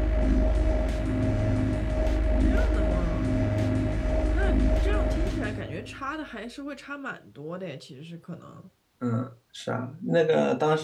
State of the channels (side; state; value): both; identical; correlation 1.00